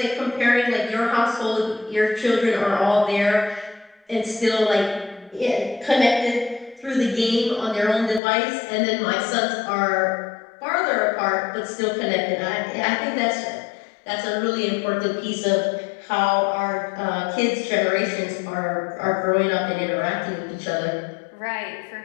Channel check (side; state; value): right; drops out; at 8.2 s